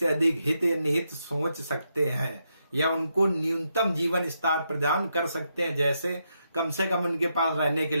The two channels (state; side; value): inverted; both; correlation -0.82